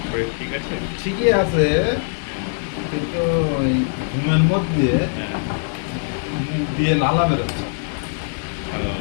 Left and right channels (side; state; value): right; silent; digital silence